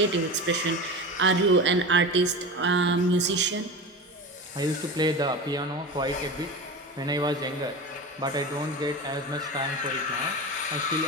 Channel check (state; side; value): normal; both; correlation 0.27